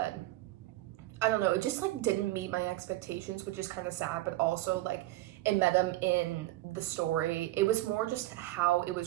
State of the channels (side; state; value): left; quieter; 16.8 dB